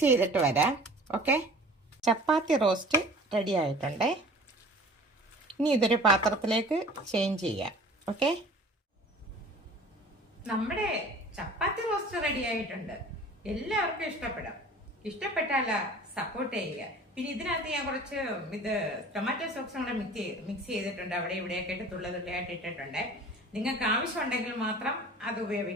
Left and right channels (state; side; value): normal; both; correlation 0.45